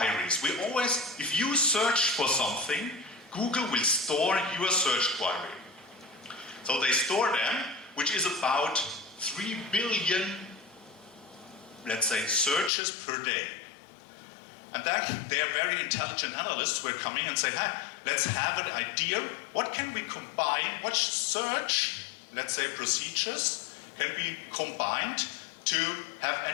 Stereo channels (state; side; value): drops out; right; at 12.7 s